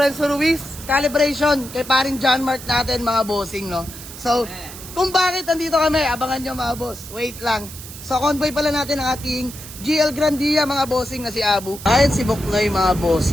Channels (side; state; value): right; noise; hiss, 14 dB below the sound